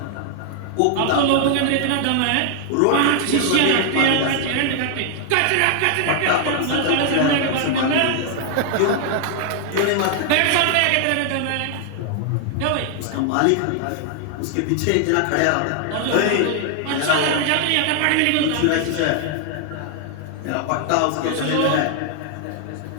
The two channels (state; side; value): different; both; correlation 0.00